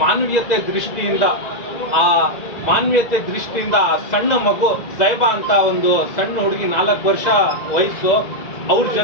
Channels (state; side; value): late; right; 2.0 ms